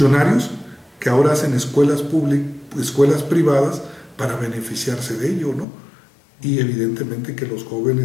que ahora hacen escuelas privadas para beneficiarse de ello, ¿no? Y evidentemente que los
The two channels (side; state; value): right; drops out; at 5.7 s